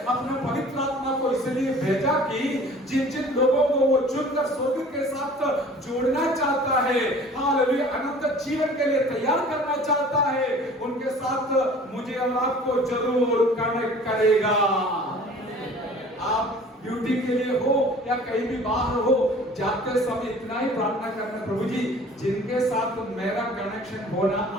अपने पवित्र आत्मा को इसलिए भेजा कि जिन जिन लोगों को वो चुनकर स्वर्ग के साथ जोड़ना चाहता है, हालेलुया, अनंत जीवन के लिए तैयार करना चाहता है, उनके साथ मुझे और आपको जरूर कनेक्ट करेगा। आप ड्यूटी के लिए हो या कहीं भी बाहर हो, जाते समय इतना ही प्रार्थना करना, प्रभु जी जिनके साथ मेरा कनेक्शन होना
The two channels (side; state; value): both; normal; correlation 0.47